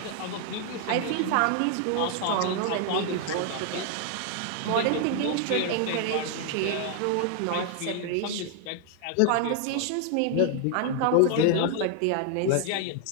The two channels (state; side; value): different; both; correlation 0.00